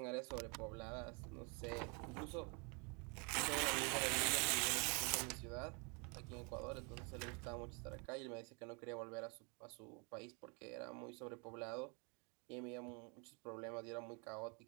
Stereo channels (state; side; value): quieter; left; 32.9 dB